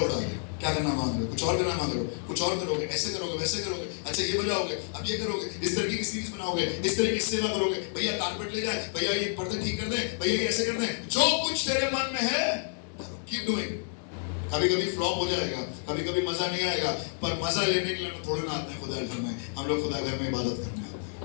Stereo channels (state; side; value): silent; right; digital silence